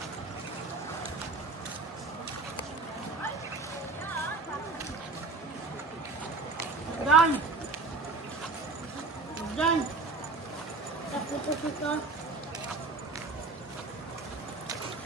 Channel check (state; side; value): quieter; left; 3.7 dB